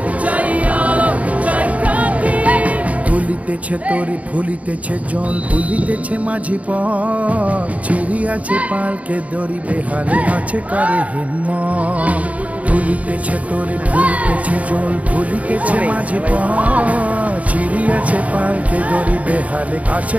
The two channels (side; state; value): left; late; 0.068 ms